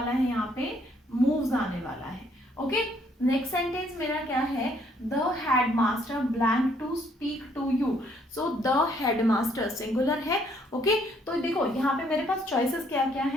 है? यहाँ पे मूव्स आने वाला है। ओके, नेक्स्ट सेंटेंस मेरा क्या है? The headmaster blank to speak to you. So the headmaster singular है। ओके, तो देखो यहाँ पे मेरे पास चॉइसेस क्या क्या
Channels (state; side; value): normal; both; correlation 0.67